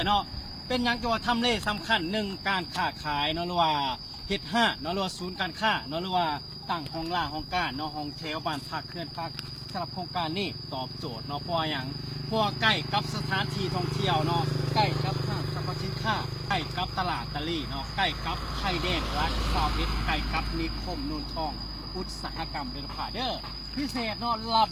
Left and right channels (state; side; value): identical; both; correlation 1.00